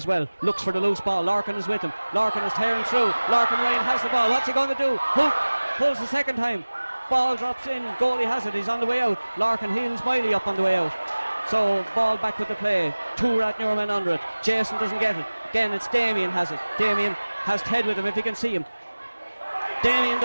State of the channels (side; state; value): both; inverted; correlation -1.00